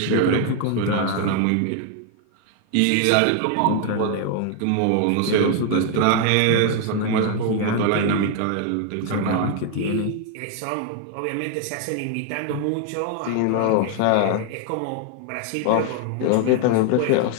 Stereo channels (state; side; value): different; both; correlation 0.00